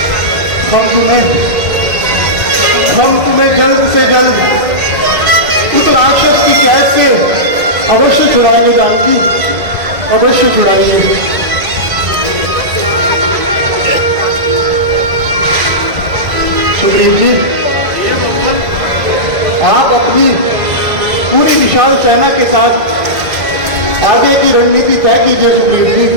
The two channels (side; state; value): left; late; 2.1 ms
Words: हम तुम्हें जल्द से जल्द उस राक्षस की कैद से अवश्य छुड़ाएंगे जानकी। और अवश्य चुराइए। सुग्रीव जी, आप अपनी पूरी विशाल सेना के साथ आगे की रणनीति तय कीजिए। सुग्रीव जी,